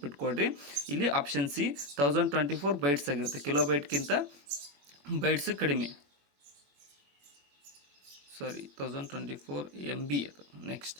ಇಲ್ಲಿ ಆಪ್ಷನ್ ಸಿ 1024 ಬೈಟ್ಸ್ ಆಗಿರುತ್ತೆ. ಕಿಲೋಬೈಟ್ಗಿಂತ ಬೈಟ್ಸ್ ಕಡಿಮೆ. 1024 MB ಅದು. ನೆಕ್ಸ್ಟ್,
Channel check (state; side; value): late; left; 21 ms